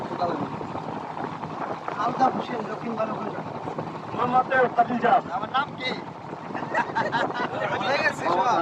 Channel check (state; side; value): identical; both; correlation 1.00